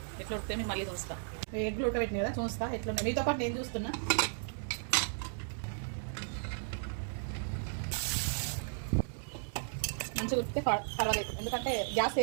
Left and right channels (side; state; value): left; silent; 55 dB below the other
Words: ఎట్లా ఉడితే మీకు మళ్ళీ చూస్తా. ఎగ్గులు ఉడకబెట్టిన కదా చూస్తా ఎట్లున్నాయి. మీతో పాటు నేను చూస్తున్నా. మంచిగా ఉడికితే పర్వాలేదు, ఎందుకంటే గ్యాస్